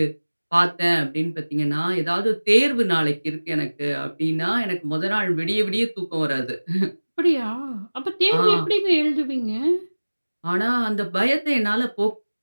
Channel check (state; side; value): inverted; both; correlation -1.00